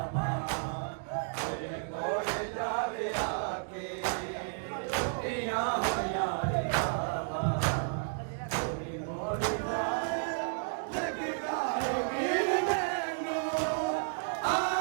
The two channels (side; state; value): left; silent; digital silence